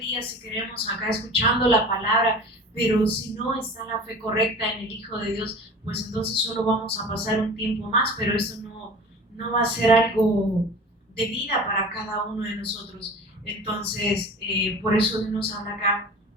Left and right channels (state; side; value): normal; both; correlation 0.38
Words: si queremos, acá escuchando la palabra, pero si no está la fe correcta en el Hijo de Dios, pues entonces solo vamos a pasar un tiempo más, pero eso no va a ser algo de vida para cada uno de nosotros. Entonces, por eso Dios nos habla acá